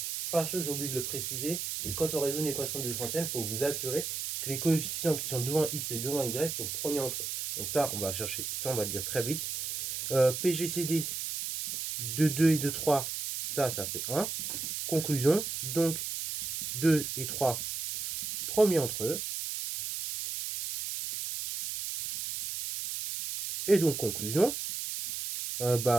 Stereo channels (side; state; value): right; noise; hiss, 4 dB below the sound